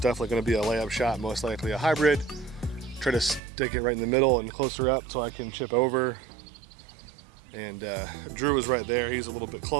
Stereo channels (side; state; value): left; drops out; at 3.4 s